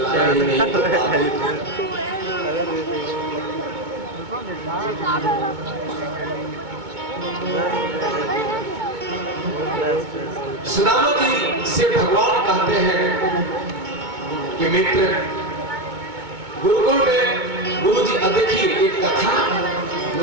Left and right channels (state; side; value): late; left; 2.2 ms